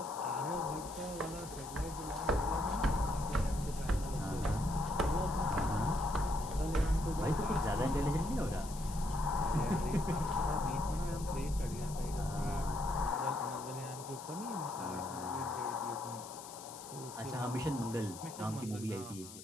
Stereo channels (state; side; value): noise; left; hiss, 14 dB below the sound